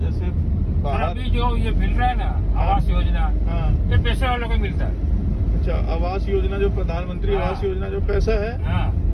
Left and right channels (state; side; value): identical; both; correlation 1.00